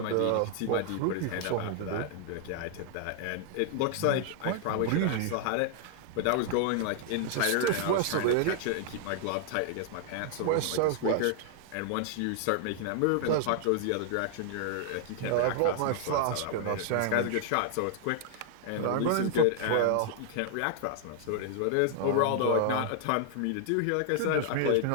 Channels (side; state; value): both; different; correlation 0.00